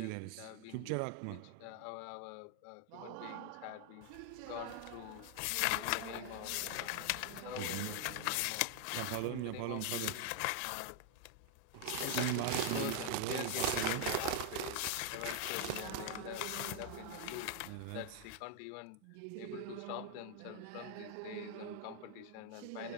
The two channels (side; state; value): both; different; correlation 0.00